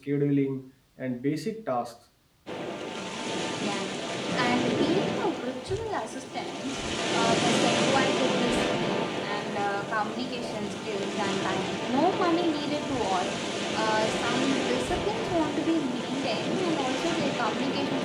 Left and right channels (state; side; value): identical; both; correlation 1.00